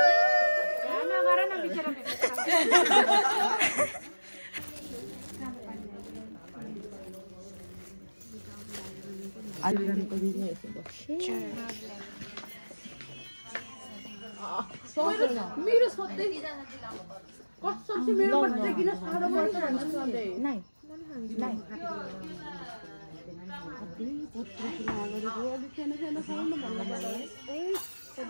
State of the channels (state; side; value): inverted; both; correlation -1.00